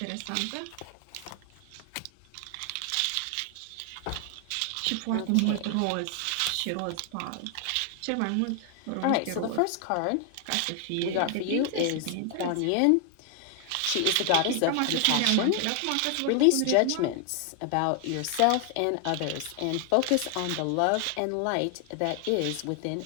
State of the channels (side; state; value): both; different; correlation 0.00